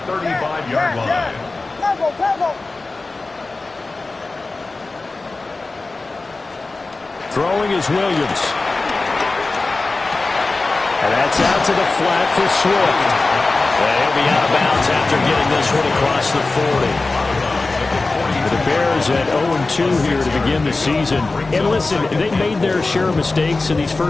35-yard line. Throwing is Williams. And that's out to the flat for Swift. And he'll be out of bounds after getting this one across the 40. The Bears at 0-2 here to begin the season. And listen, they made their share of mistakes in these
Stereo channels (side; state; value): right; quieter; 3.5 dB